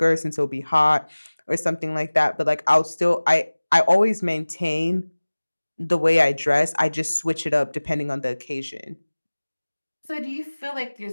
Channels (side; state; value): both; inverted; correlation -1.00